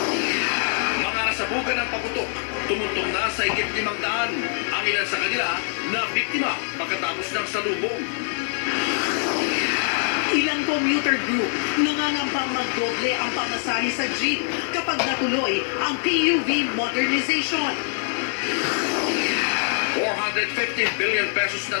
Mga nasabugan ng paputok, tumuntong na sa higit 500 ang ilan sa kanila na biktima pagkatapos ng salubong. Ilang commuter group nangangambang magdoble ang pamasahe sa jeep kapag natuloy ang PUV modernization. 450 billion pesos na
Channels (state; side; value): silent; right; 62 dB below the other